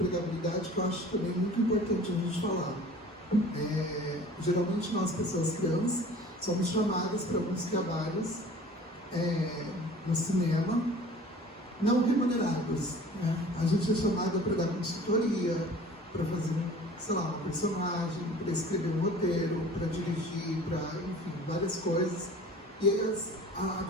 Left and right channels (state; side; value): normal; both; correlation 0.45